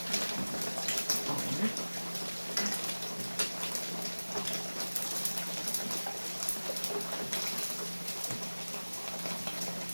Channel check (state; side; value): inverted; both; correlation -1.00